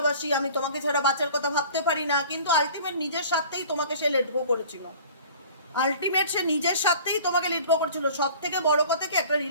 আমি তোমাকে ছাড়া বাচ্চার কথা ভাবতে পারি না, কিন্তু আলটিমেট নিজের স্বার্থেই তোমাকে সে লেট গো করেছিল, আলটিমেট সে নিজের স্বার্থেই তোমাকে লেট গো করেছিল। সব থেকে বড় কথা কি, একটা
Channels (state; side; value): inverted; both; correlation -0.45